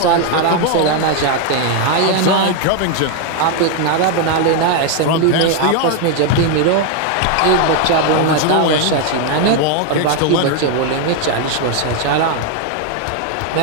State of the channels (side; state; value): both; different; correlation 0.01